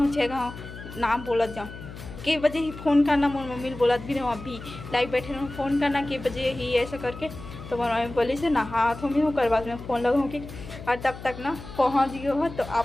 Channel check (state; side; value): noise; left; hum, 13 dB below the sound